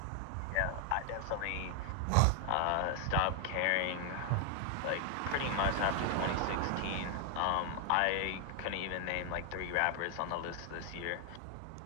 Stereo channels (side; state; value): both; different; correlation 0.00